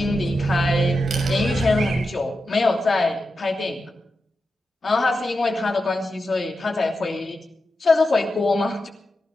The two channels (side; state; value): both; normal; correlation 0.89